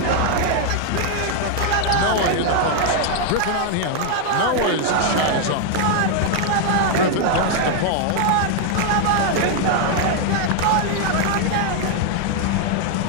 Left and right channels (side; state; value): both; different; correlation 0.00